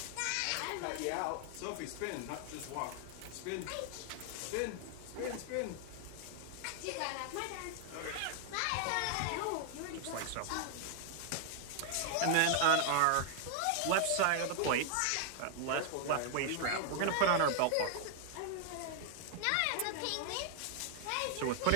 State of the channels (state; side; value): different; both; correlation 0.00